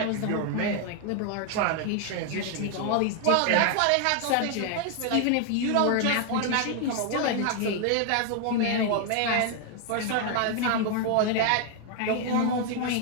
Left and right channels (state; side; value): different; both; correlation 0.00